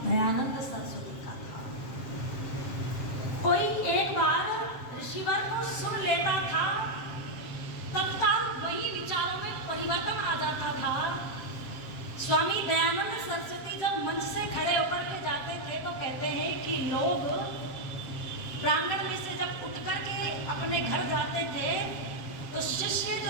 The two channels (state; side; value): late; right; 7.4 ms